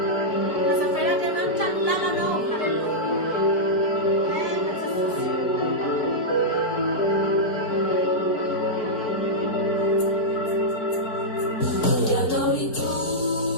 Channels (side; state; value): right; late; 4.5 ms